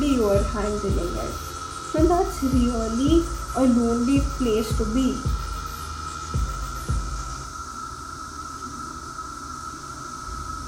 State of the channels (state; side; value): identical; both; correlation 1.00